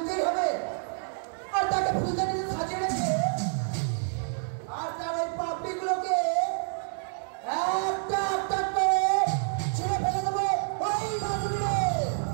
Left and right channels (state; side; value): silent; left; 59 dB below the other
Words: হবে, আর তাকে ফুলদানিতে সাজিয়ে রেখে আর তার ওই পাপড়িগুলোকে একটা একটা করে ছেড়ে ফেলে দেবো ওই গাছগুলো।